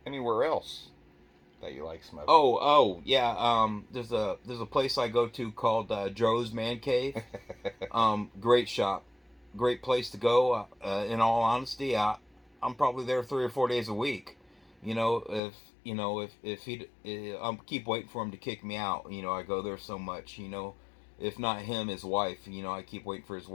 Anywhere else that you like smoking? Yeah. There's a place I go to called Joe's Man Cave. Great shop, great place to go. In all honesty, I'm probably there 3 or 4 days a week. If he, I'm keep waiting for him to kick me out. I go there so much. If not him, his wife. I keep waiting for his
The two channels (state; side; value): drops out; right; at 15.4 s